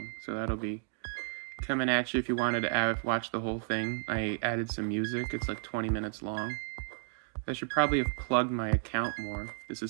So that'll be coming at you if you wanted to watch the whole thing. I added some music. It's like 20 minutes long. I should probably have plugged my account more. This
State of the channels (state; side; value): silent; left; digital silence